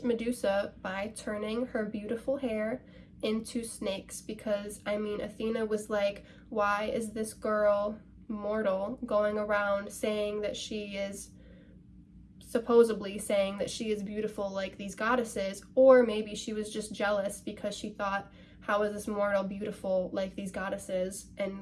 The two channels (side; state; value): both; identical; correlation 1.00